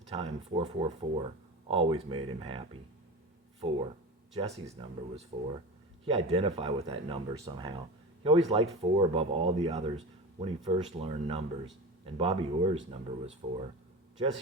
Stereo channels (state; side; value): normal; both; correlation 0.28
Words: time 444 always made him happy. 4. Jesse's number was 4. He identified with that number somehow. He always liked 4 above all the others when he first learned numbers, and Bobby Orr's number was 4.